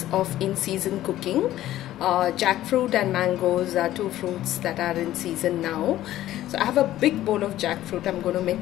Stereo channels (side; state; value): right; quieter; 13.9 dB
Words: of in-season cooking, jackfruit and mangoes are two fruits that are in season now. So I have a big bowl of jackfruit. I'm going to make